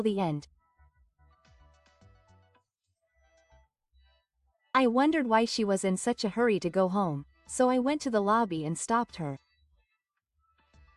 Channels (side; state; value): both; identical; correlation 1.00